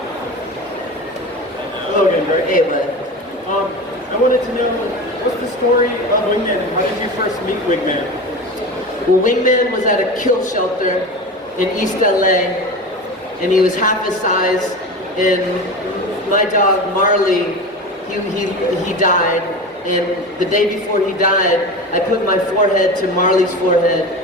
Hello again, Greg. Hey, bud. I wanted to know, what's the story of Wingman? How did you first meet Wingman? Well, Wingman was at a kill shelter in East LA, and he was half his size, and my dog Marley, he died, and the day before he died, I put my forehead to Marley's forehead,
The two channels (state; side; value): normal; both; correlation 0.29